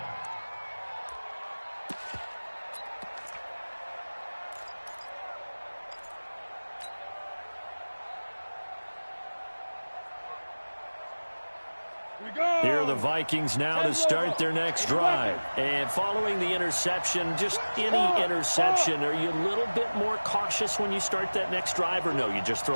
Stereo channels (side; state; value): both; inverted; correlation -1.00